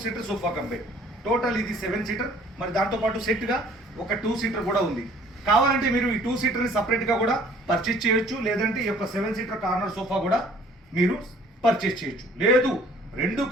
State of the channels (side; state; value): both; normal; correlation 0.55